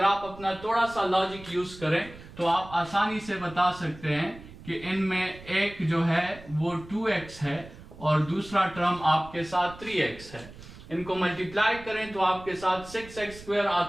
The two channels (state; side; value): noise; right; rumble, 17 dB below the sound